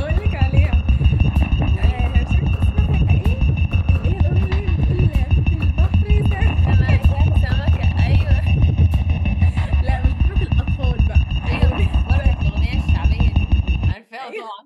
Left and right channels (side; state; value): both; identical; correlation 1.00